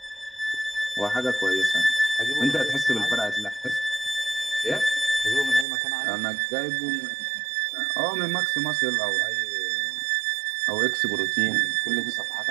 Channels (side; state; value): left; drops out; at 5.7 s